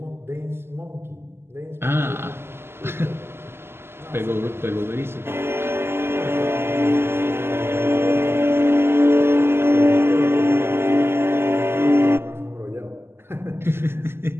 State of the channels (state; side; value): late; left; 0.12 ms